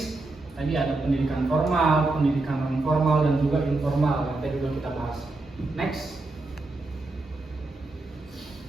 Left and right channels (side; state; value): left; quieter; 3.2 dB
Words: Tadi ada pendidikan formal, pendidikan non formal dan juga informal yang tadi sudah kita bahas. Next.